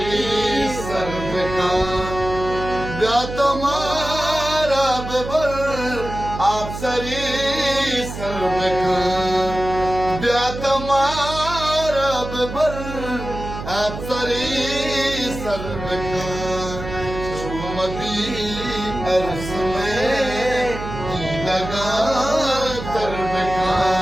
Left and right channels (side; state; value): right; noise; hum, 9 dB below the sound